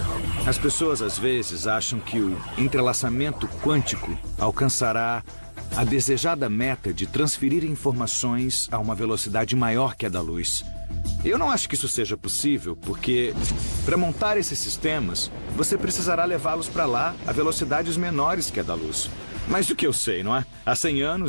As pessoas às vezes acham que o entrelaçamento quântico alcançará a desejada meta de transferir informações a uma velocidade maior que a da luz. Eu não acho que isso seja possível, porque para montar esses sistemas, você precisará levá-los para lá a velocidades menores que a da luz. Mas do que eu sei, não é? Há 100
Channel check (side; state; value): both; inverted; correlation -1.00